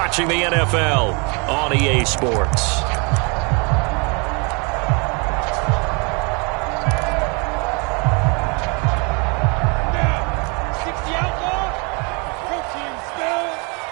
the NFL on EA Sports.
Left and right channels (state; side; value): quieter; left; 32.1 dB